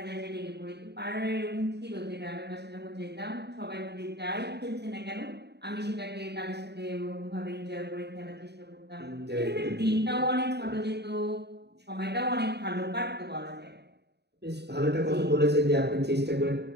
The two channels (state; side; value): late; left; 0.49 ms